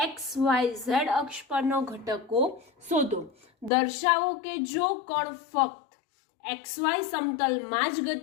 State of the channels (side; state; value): right; drops out; at 3.7 s